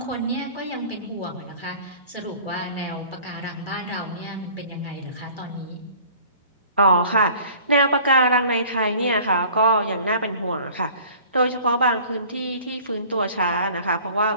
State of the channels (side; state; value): both; inverted; correlation -0.49